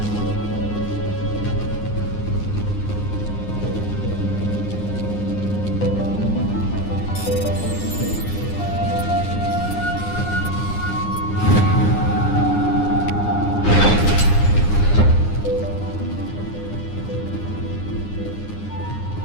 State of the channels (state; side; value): late; right; 9.7 ms